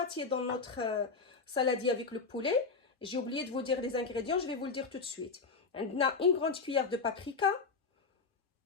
dans notre saladier avec le poulet. J'ai oublié de vous dire les ingrédients, je vais vous le dire tout de suite. On a une grande cuillère de paprika,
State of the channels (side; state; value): right; quieter; 4.6 dB